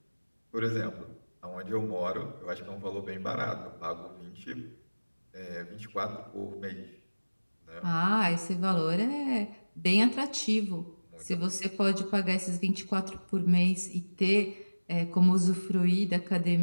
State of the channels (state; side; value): inverted; both; correlation -1.00